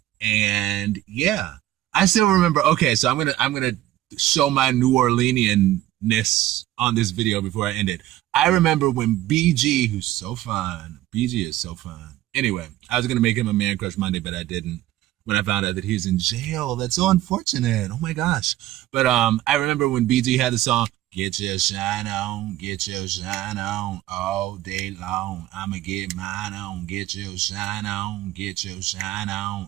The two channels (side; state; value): left; quieter; 14.7 dB